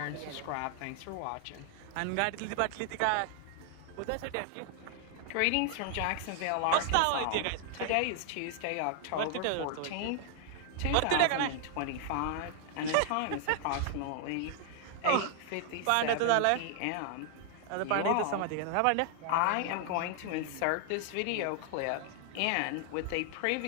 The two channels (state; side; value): different; both; correlation 0.00